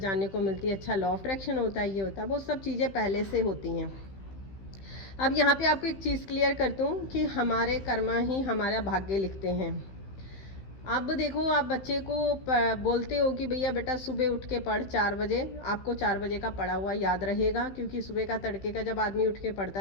को मिलती है। अच्छा, लॉ ऑफ अट्रैक्शन होता है, ये होता है, वो सब चीज़ें पहले से होती हैं। अब यहाँ पे आपको एक चीज़ क्लियर करता हूँ कि हमारे कर्मा ही हमारा भाग्य लिखते हैं। अब देखो, आप बच्चे को बोलते हो कि भैया बेटा सुबह उठ के पढ़ 4 बजे, आपको 4 बजे का पढ़ा हुआ याद रहेगा, क्योंकि सुबह का तड़के का जब आदमी उठ के पढ़ता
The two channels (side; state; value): right; late; 15 ms